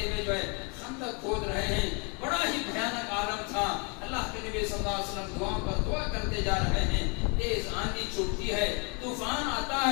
ہوئے جو ہے خندق کھود رہے ہیں۔ بڑا ہی بھیانک عالم تھا۔ اللہ کے نبی صلی اللہ علیہ وسلم دعا پر دعا کرتے جا رہے ہیں، تیز آندھی چھوٹتی ہے، طوفان آتا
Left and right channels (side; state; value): right; quieter; 33.9 dB